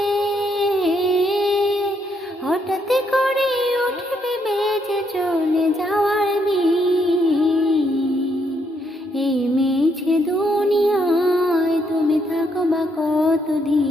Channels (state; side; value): normal; both; correlation 0.74